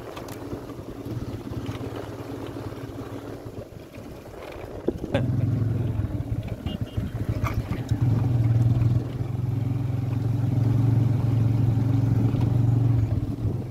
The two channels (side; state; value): both; identical; correlation 1.00